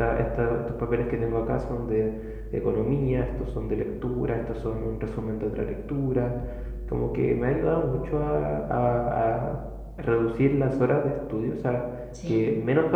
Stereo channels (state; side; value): identical; both; correlation 1.00